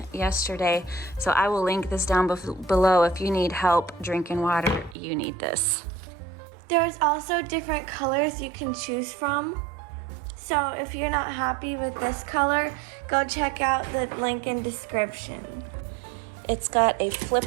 yesterday. So I will link this down below. If you need help drinking water, you need this. There's also different colors you can choose from. So if you're not happy with this color, go check out the link in description. It's got a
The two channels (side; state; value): left; drops out; at 5.0 s